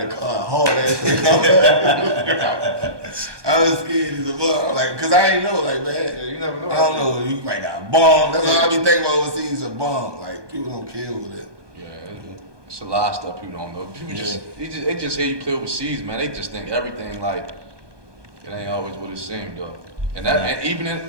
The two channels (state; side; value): late; left; 1.2 ms